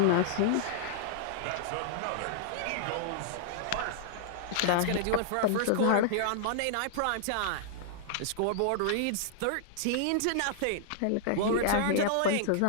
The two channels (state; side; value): different; both; correlation -0.01